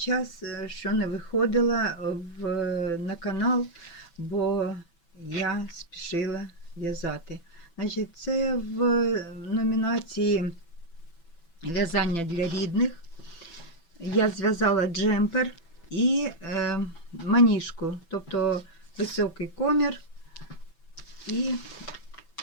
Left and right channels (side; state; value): right; late; 6.0 ms